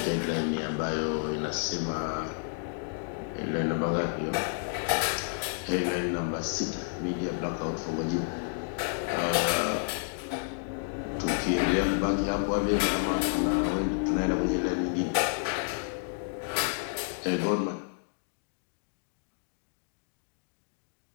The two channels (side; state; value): right; silent; digital silence